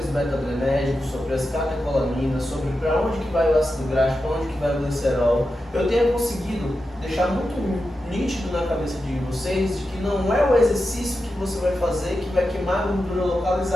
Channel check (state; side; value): normal; both; correlation 0.90